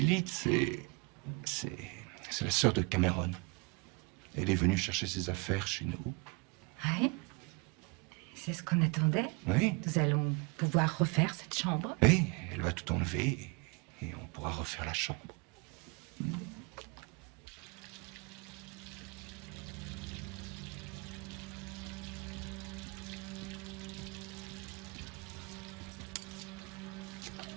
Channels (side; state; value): left; quieter; 28.2 dB